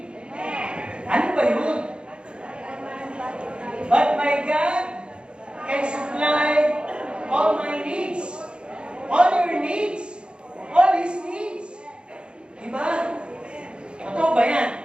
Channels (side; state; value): left; late; 0.054 ms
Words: Ano ba yun? But my God can supply all my needs. All your needs. All His needs. Diba? Totoo ba yan?